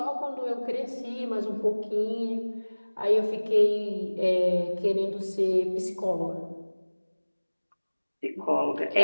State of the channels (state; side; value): inverted; both; correlation -1.00